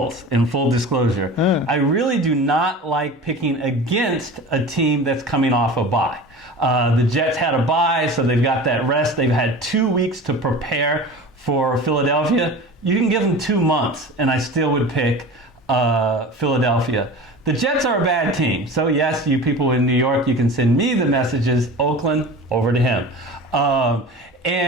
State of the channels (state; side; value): normal; both; correlation 0.35